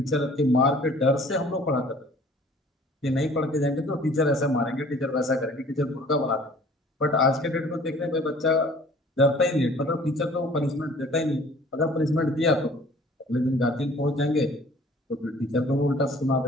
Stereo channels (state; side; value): normal; both; correlation 0.51